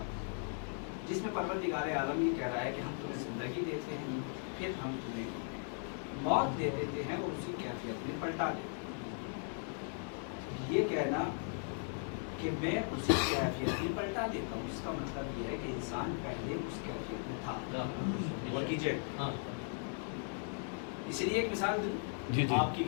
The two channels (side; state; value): right; silent; 53 dB below the other